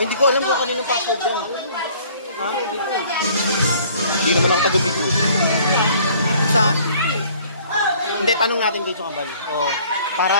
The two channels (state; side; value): inverted; both; correlation -0.55